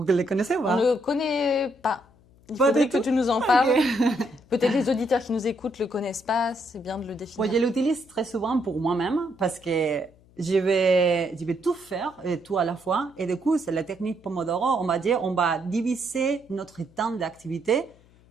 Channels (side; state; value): left; noise; hum, 29 dB below the sound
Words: la connaissez ou pas? On ne connaît pas. Il faudrait que tu nous en parles. Okay. Peut-être les auditeurs qui nous écoutent ne le connaissent pas. C'est bien de le définir. Bon, je l'utilise très souvent pour moi-même parce que je vais tout faire et tout à la fois. Et du coup, c'est la technique Pomodoro. On va dire, on va diviser notre temps d'activité